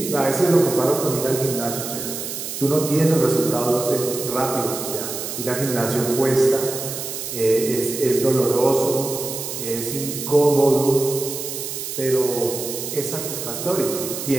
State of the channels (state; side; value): noise; right; hiss, 6 dB below the sound